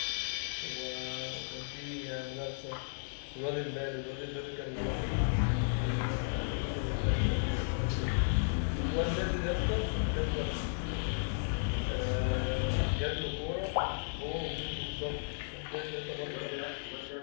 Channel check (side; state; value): right; silent; digital silence